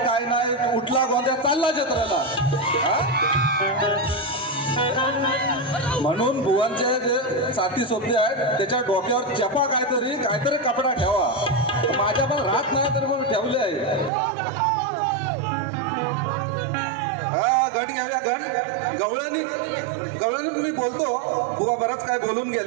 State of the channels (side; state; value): left; drops out; at 14.1 s